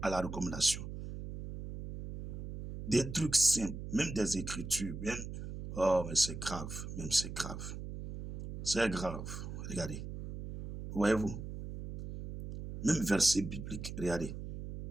à la recommandation. Des trucs simples, même des écritures, même... Oh, mais c'est grave, même c'est grave. C'est grave. Regardez. Voyez-vous? Même verset biblique. Regardez.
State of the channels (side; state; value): right; noise; hum, 8 dB below the sound